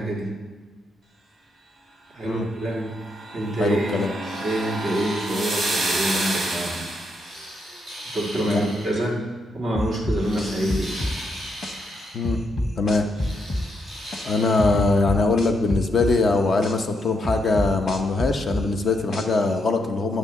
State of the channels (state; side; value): normal; both; correlation 0.79